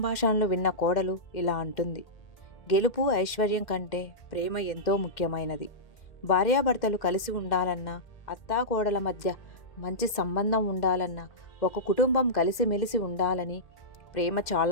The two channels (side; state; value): right; late; 1.8 ms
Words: విన్న కోడలు ఇలా అంటుంది, గెలుపు ఐశ్వర్యం కంటే ప్రేమ ఎంతో ముఖ్యమైనది. భార్యాభర్తలు కలిసి ఉండాలన్నా, అత్తాకోడల మధ్య మంచి సంబంధం ఉండాలన్నా, ఒక కుటుంబం కలిసిమెలిసి ఉండాలని ప్రేమ